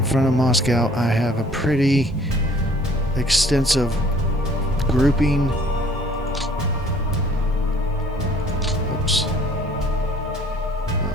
front of Moscow, I have a pretty extensive grouping. Oops.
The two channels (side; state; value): both; normal; correlation 0.56